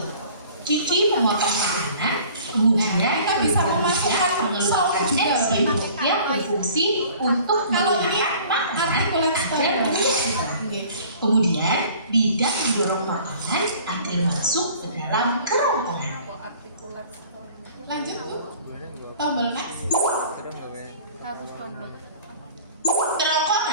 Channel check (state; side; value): inverted; both; correlation -0.49